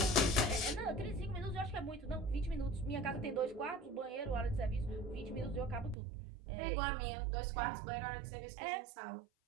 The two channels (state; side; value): drops out; left; at 6.0 s